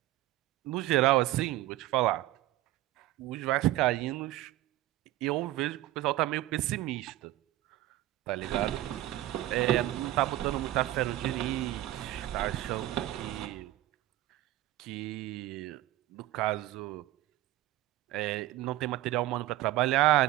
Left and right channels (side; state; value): left; quieter; 15.5 dB